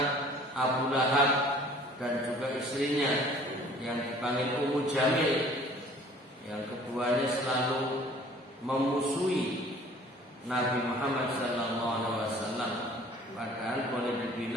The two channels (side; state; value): both; normal; correlation 0.51